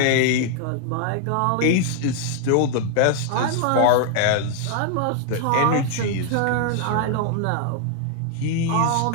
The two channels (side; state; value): both; different; correlation 0.00